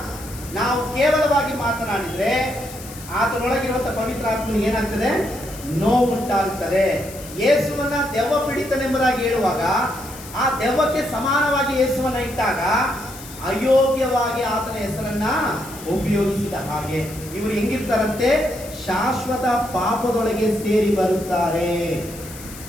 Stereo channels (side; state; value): left; noise; hiss, 15 dB below the sound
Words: ನಾವು ಕೇವಲವಾಗಿ ಮಾತನಾಡಿದ್ರೆ ಆತನೊಳಗಿರುವಂತಹ ಪವಿತ್ರಾತ್ಮನಿಗೆ ಏನಾಗ್ತದೆ? ನೋವುಂಟಾಗುತ್ತದೆ. ಯೇಸುವನ್ನ ದೆವ್ವ ಪೀಡಿತನೆಂಬುದಾಗಿ ಹೇಳುವಾಗ ಆ ದೆವ್ವಕ್ಕೆ ಸಮಾನವಾಗಿ ಯೇಸುವನ್ನ ಇಟ್ಟಾಗ ಅಯೋಗ್ಯವಾಗಿ ಆತನ ಹೆಸರನ್ನ ಉಪಯೋಗಿಸಿದ ಹಾಗೆ. ಇವರು ಹೆಂಗಿರ್ತಾರಂತೆ? ಶಾಶ್ವತ ಪಾಪದೊಳಗೆ ಸೇರಿ ಬರುತ್ತಾರೆ.